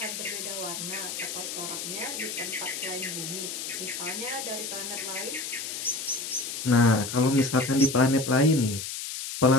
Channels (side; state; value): left; noise; hiss, 6 dB below the sound